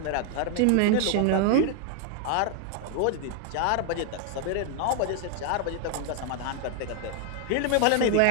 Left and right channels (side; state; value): both; different; correlation 0.00